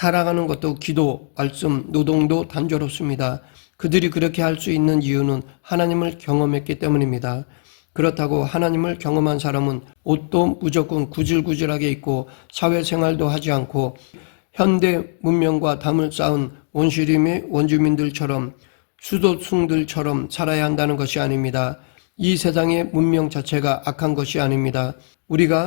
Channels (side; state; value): right; silent; 66 dB below the other